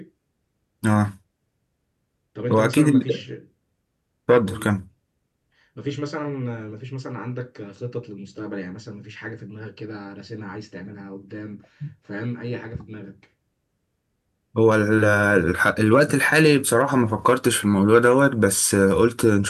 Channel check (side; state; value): both; identical; correlation 1.00